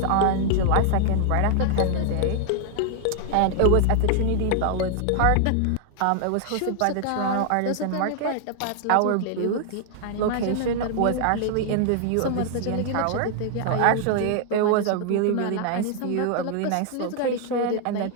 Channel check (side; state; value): both; different; correlation 0.00